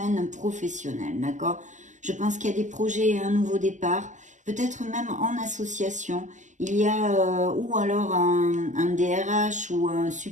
professionnel, d'accord? Je pense qu'il y a des projets et un nouveau départ, peut-être même en association, il y a ou alors un DRH ou un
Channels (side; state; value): left; late; 0.35 ms